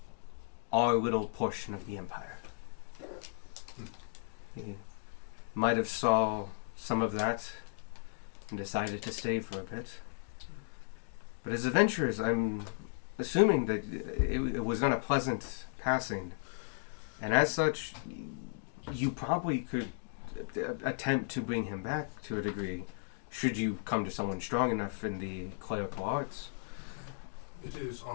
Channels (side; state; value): right; silent; digital silence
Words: our little portion of the empire. He might have saw some of that and decided to stay for a bit. But as adventurers, I'm assuming that it was not a pleasant passing. And as such, you probably could attempt to bring him back to a degree, should you come to someone strong enough in the clerical arts. It is